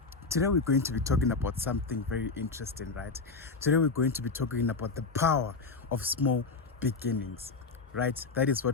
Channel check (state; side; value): quieter; right; 4.2 dB